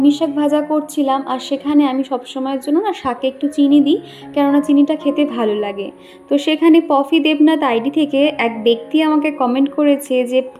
শাক ভাজা করছিলাম, আর সেখানে আমি সবসময়ের জন্য না শাকে একটু চিনি দিই, কেননা চিনিটা খেতে ভালো লাগে। তো সেখানে পফি দেবনাথ আইডি থেকে এক ব্যক্তি আমাকে কমেন্ট করেছে যে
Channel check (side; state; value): both; identical; correlation 1.00